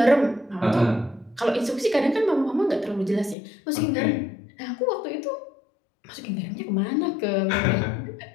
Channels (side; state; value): right; drops out; at 3.4 s